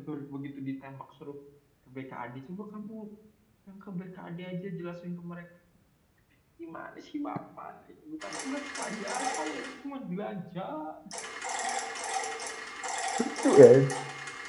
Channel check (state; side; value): identical; both; correlation 1.00